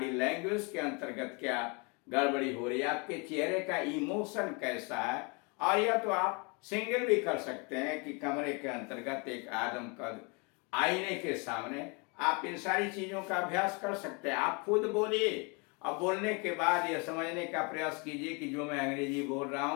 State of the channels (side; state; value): right; quieter; 31.7 dB